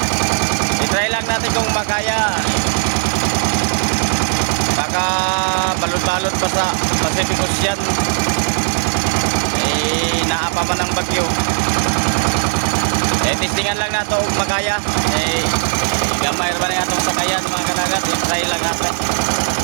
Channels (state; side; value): silent; left; digital silence